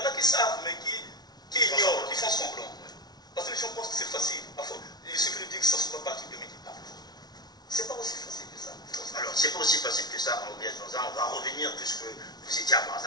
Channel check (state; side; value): late; right; 0.19 ms